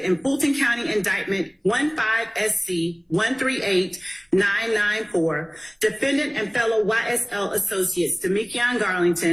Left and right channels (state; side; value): identical; both; correlation 1.00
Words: in Fulton County Indictment 15SC 138994, defendant and fellow YSL associates Demekion